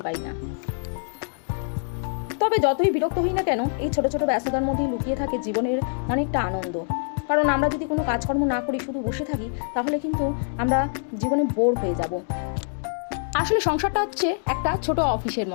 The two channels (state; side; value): silent; right; 62 dB below the other